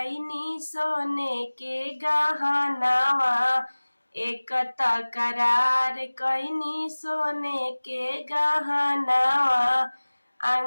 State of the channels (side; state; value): both; inverted; correlation -1.00